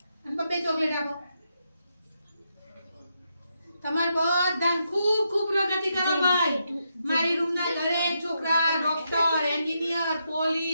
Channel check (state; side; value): inverted; both; correlation -0.82